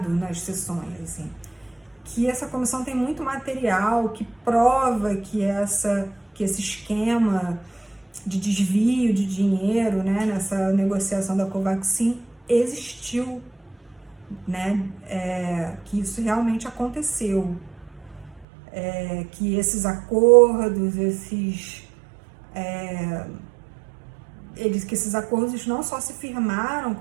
nas sessões, assim, que essa comissão tem muito material que prova que esse esquema de desvio de dinheiro, né, nessa negociação da Covaxin existiu, né, que isso realmente aconteceu, que esses acordos, que esses acordos não só se firmaram,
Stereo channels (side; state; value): left; drops out; at 18.4 s